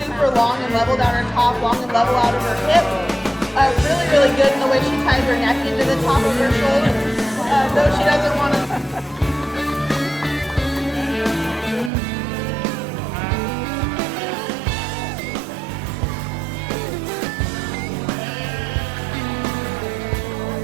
long and level down her top, long and level out of her hip. Really, really good in the way she ties her neck into the top of her shoulder. Though she doesn't want to.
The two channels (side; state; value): left; drops out; at 11.9 s